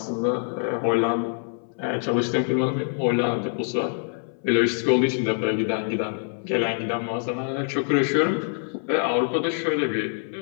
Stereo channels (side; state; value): right; silent; 60 dB below the other